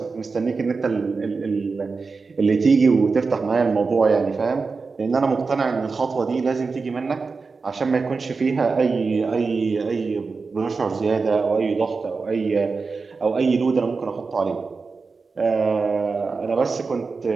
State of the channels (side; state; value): left; quieter; 4.5 dB